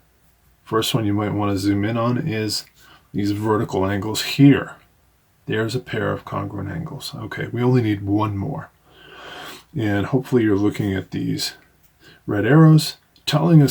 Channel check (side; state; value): both; identical; correlation 1.00